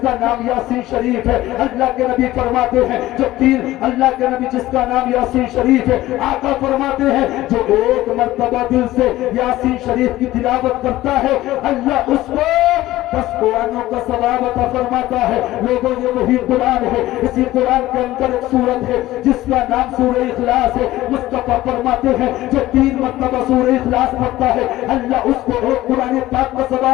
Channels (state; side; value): quieter; right; 16.1 dB